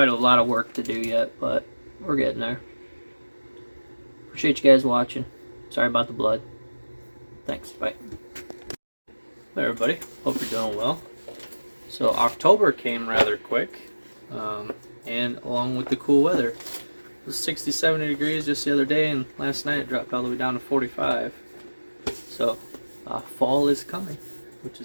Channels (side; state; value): both; inverted; correlation -1.00